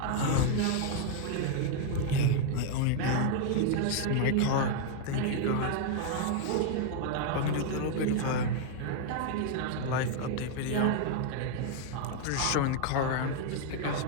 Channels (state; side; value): different; both; correlation 0.00